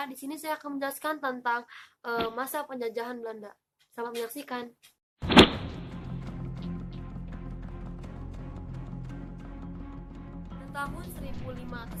Di sini saya akan menjelaskan tentang masa penjajahan Belanda. Selamat menyaksikan. Pada tahun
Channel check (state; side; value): identical; both; correlation 1.00